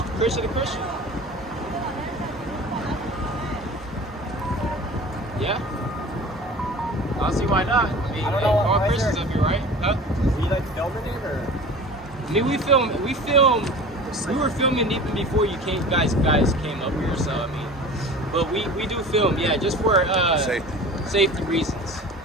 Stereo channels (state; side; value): normal; both; correlation 0.40